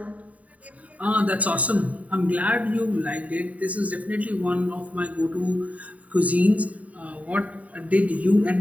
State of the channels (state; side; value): late; left; 0.070 ms